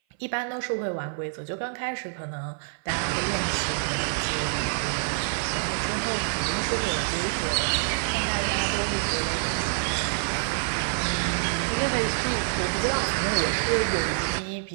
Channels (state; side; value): silent; left; 58 dB below the other